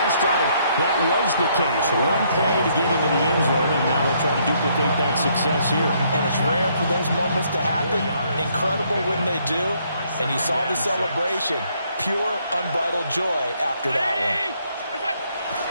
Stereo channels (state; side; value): inverted; both; correlation -0.69